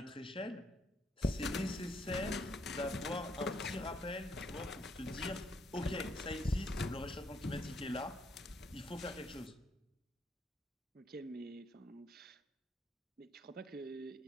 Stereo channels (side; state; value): both; normal; correlation 0.72